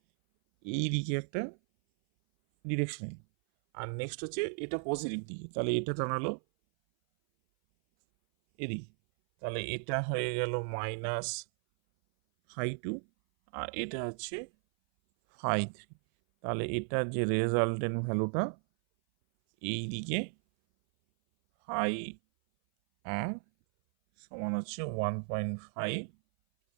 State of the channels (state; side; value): silent; left; 55 dB below the other